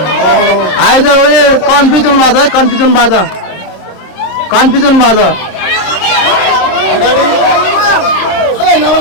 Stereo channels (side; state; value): right; late; 27 ms